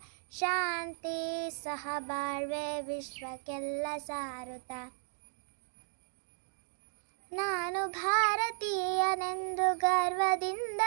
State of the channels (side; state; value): left; silent; digital silence